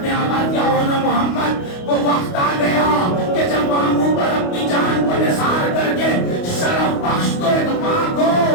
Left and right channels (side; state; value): right; late; 28 ms